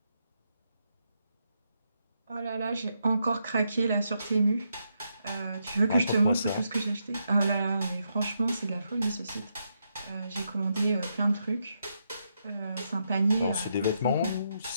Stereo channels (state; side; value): inverted; both; correlation -0.81